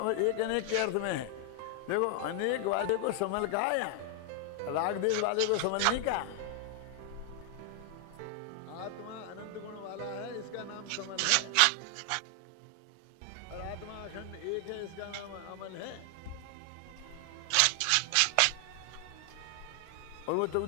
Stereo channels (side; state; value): both; different; correlation 0.00